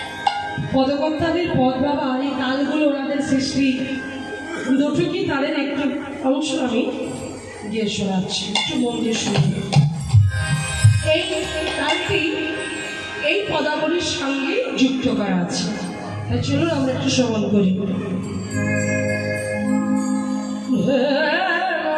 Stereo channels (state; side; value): identical; both; correlation 1.00